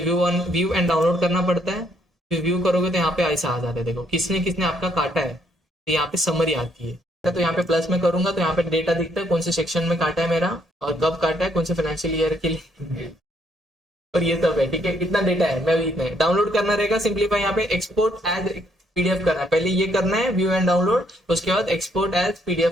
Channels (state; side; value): normal; both; correlation 0.70